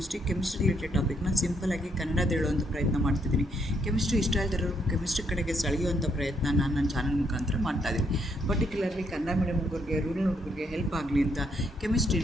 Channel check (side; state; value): both; normal; correlation 0.73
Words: ರಿಲೇಟೆಡ್ ಟಾಪಿಕ್ನ ಸಿಂಪಲಾಗಿ ಕನ್ನಡದ ಹೇಳುವಂಥ ಪ್ರಯತ್ನ ಮಾಡ್ತಿದ್ದೀನಿ. ಕೆಮಿಸ್ಟ್ರಿ ಇಷ್ಟ ಇಲ್ದಿರೋ ಕೆಮಿಸ್ಟ್ರಿ ಕಡೆಗೆ ಸೆಳೆಯುವಂಥ ಪ್ರಯತ್ನ ನಾನು ನನ್ನ ಚಾನಲ್ ಮುಖಾಂತರ ಮಾಡ್ತಾಯಿದ್ದೀನಿ. ಪರ್ಟಿಕ್ಯುಲರ್ಲಿ ಕನ್ನಡ ಮೀಡಿಯಂ ಹುಡುಗರಿಗೆ, ರೂರಲ್ ಹುಡುಗರಿಗೆ ಹೆಲ್ಪ್ ಆಗಲಿ ಅಂತ